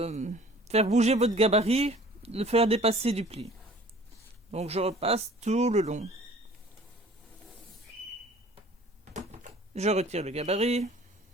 faire bouger votre gabarit, le faire dépasser du pli. Donc je repasse tout le long. Je retire le gabarit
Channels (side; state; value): both; normal; correlation 0.50